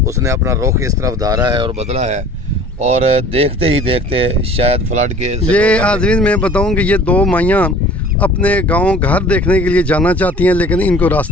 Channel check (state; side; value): normal; both; correlation 0.47